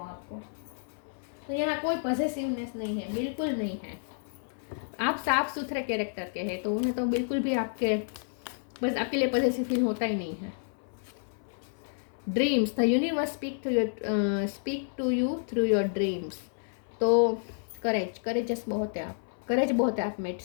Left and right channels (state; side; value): silent; right; 58 dB below the other